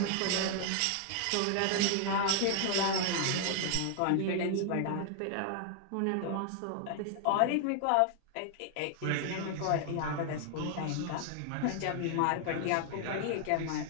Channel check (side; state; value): both; different; correlation 0.00